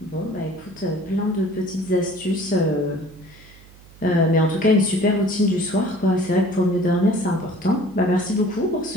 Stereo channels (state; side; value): noise; right; hum, 23 dB below the sound